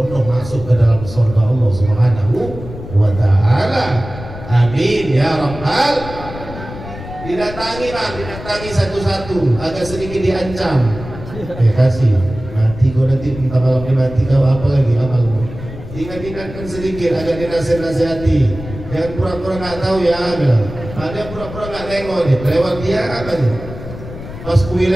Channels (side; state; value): left; noise; rumble, 12 dB below the sound